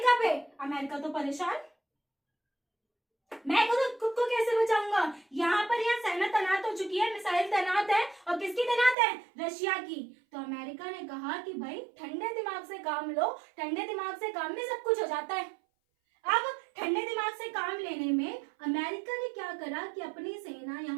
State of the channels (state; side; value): drops out; left; at 9.0 s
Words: पे। अमेरिका तो परेशान, मैं खुद को कैसे बचाऊंगा? यहाँ पर यहाँ सेना तैनात हो चुकी है, मिसाइल तैनात है, और किसकी तैनात है? रशिया की। तो अमेरिका ने कहा कि भाई ठंडे दिमाग से काम लो, ठंडे दिमाग से काम में सब कुछ हो जाता है। अब ठंडे दिमाग से काम लेने में अमेरिका ने क्या करा कि अपनी सेना